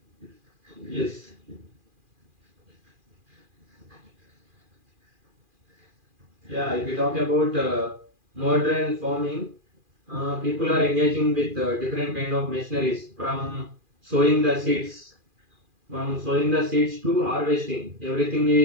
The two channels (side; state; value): left; late; 2.4 ms